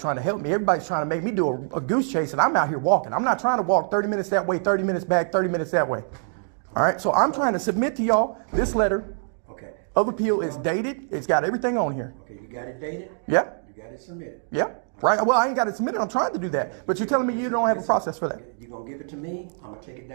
to help me. Everybody's trying to make me do a goose chase, and I'm out here walking. I'm not trying to walk 30 minutes that way, 30 minutes back, 30 minutes that way. All right, so I'm trying to submit to y'all this letter of appeal. Is dated. It's got everything on here. Okay, you got it dated? Yeah. You got it submitted? Yeah. Right. Well, I ain't got it submitted. I'm trying to do that. But you're telling me you don't have a process for that. You're going to give it to me. I'm going to take it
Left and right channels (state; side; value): silent; left; 62 dB below the other